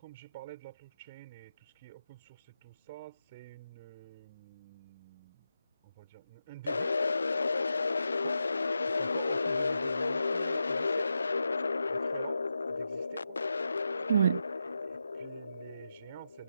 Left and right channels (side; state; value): both; inverted; correlation -0.88